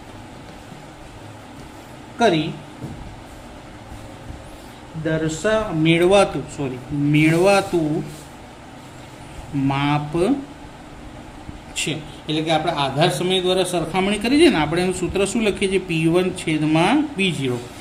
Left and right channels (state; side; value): identical; both; correlation 1.00